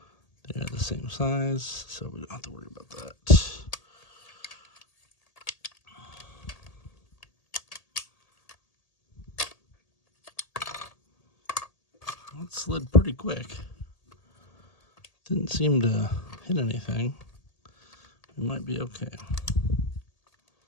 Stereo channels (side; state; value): right; late; 1.8 ms